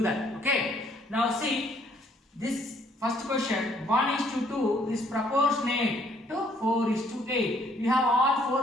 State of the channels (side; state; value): both; normal; correlation 0.65